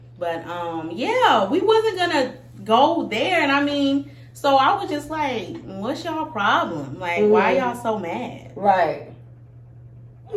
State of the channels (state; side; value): identical; both; correlation 1.00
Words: But yeah, we wasn't gonna go there, and I mean, so I was just like, what's y'all problem? Like, why y'all so mad? Right.